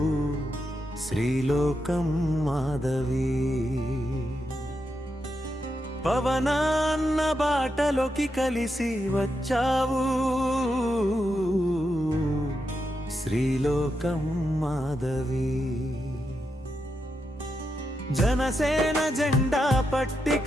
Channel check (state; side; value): normal; both; correlation 0.85